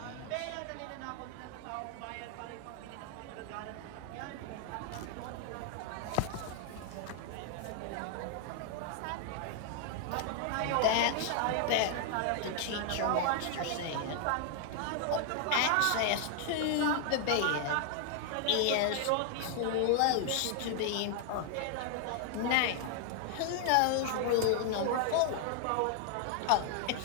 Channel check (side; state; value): both; different; correlation 0.00